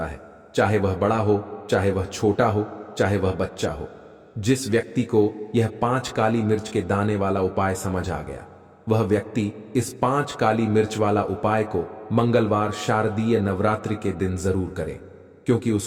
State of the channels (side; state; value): both; identical; correlation 1.00